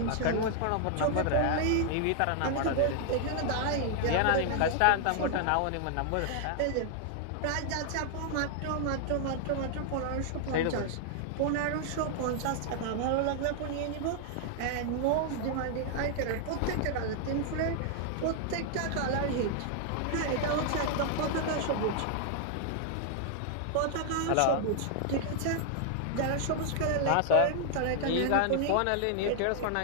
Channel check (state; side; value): different; both; correlation 0.00